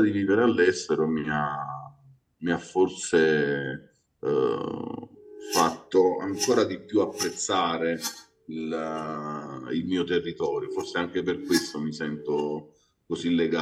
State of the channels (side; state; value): both; identical; correlation 1.00